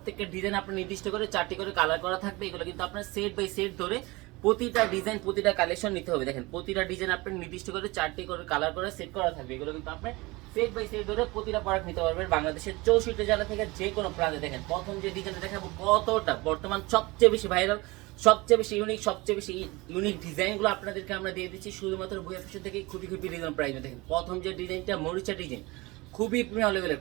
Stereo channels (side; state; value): left; quieter; 22.9 dB